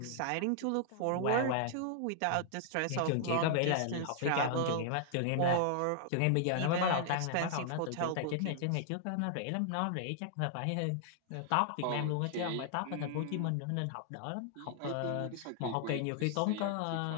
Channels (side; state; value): both; different; correlation -0.01